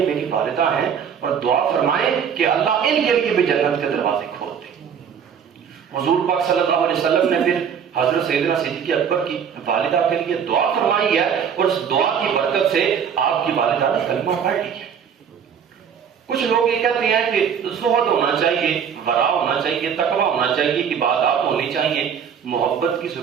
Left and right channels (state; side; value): quieter; left; 7.5 dB